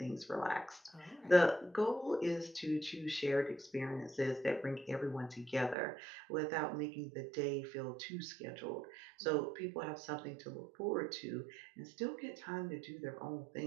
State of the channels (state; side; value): drops out; left; at 5.8 s